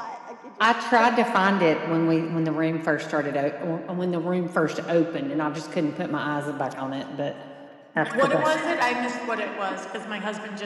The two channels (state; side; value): identical; both; correlation 1.00